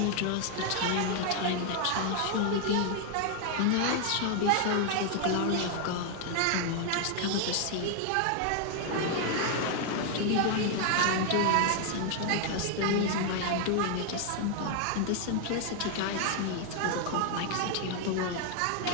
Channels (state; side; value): different; both; correlation 0.00